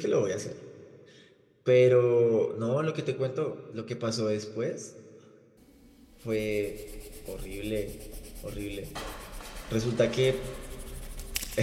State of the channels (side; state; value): both; identical; correlation 1.00